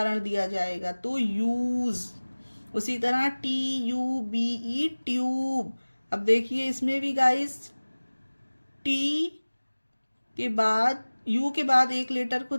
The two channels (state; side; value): inverted; both; correlation -1.00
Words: दिया जाएगा, तो यूज। उसी तरह TUBE ट्यूब। अब देखिए इसमें भी गाइस टी के बाद यू के बाद एक लेटर को